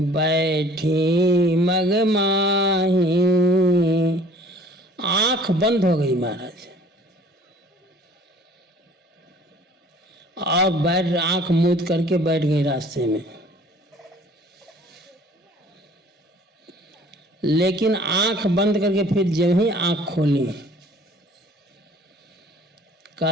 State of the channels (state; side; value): normal; both; correlation 0.51